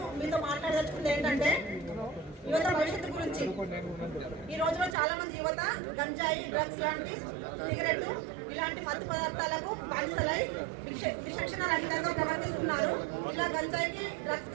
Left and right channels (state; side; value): drops out; left; at 5.0 s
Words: మీతో మాట్లాడదలుచుకుంది ఏంటంటే యువత భవిష్యత్తు గురించి. ఈ రోజులో చాలా మంది యువత గంజాయి, డ్రగ్స్ లాంటి, సిగరెట్ ఇలాంటి మత్తు పదార్థాలకు బానిసలై విచక్షణ రహితంగా ప్రవర్తిస్తున్నారు. ఇలా గంజాయికి,